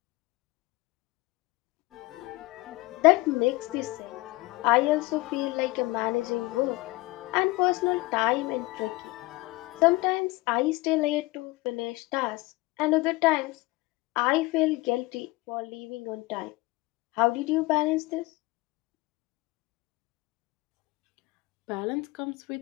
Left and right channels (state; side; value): quieter; right; 22.0 dB